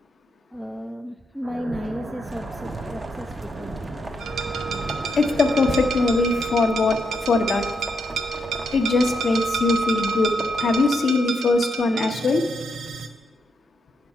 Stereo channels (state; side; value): normal; both; correlation 0.80